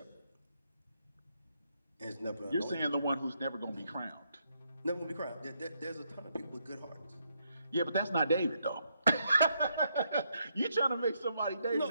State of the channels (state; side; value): inverted; both; correlation -0.77